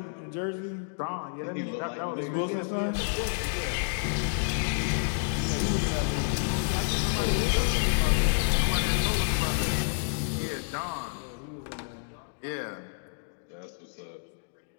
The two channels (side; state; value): right; silent; digital silence